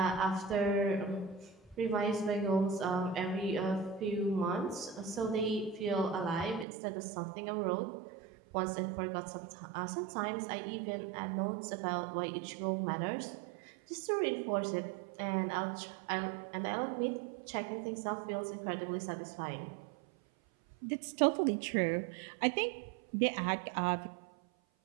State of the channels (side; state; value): left; drops out; at 6.7 s